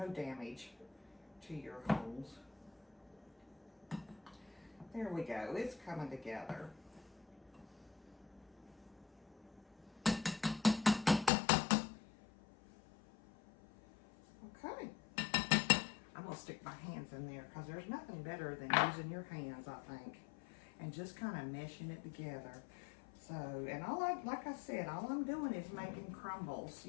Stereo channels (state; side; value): drops out; right; at 11.3 s